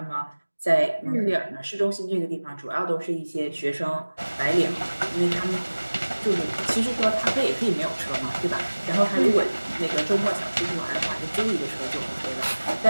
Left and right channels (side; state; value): both; inverted; correlation -1.00